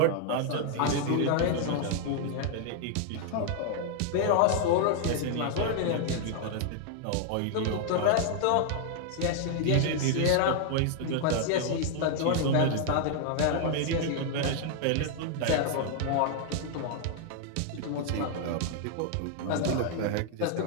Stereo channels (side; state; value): both; different; correlation 0.00